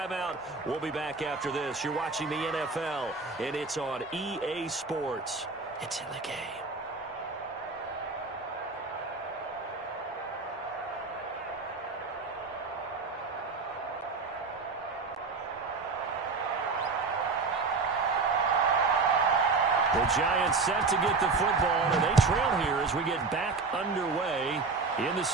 We'll be back after this. You're watching the NFL, and it's on EA Sports. It's in the game. The Giants set to get the football, and they trail here as we get back underway in the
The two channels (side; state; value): left; quieter; 4.2 dB